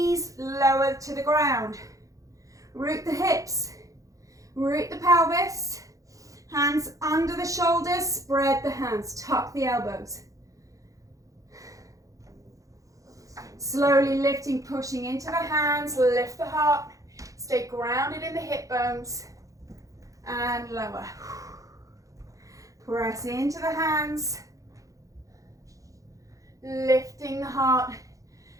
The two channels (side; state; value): left; late; 0.16 ms